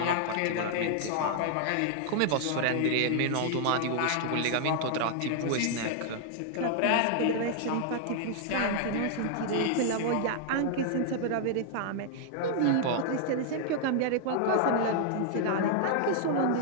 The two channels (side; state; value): both; different; correlation 0.00